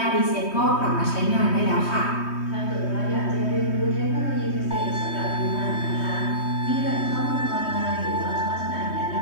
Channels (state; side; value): late; right; 3.2 ms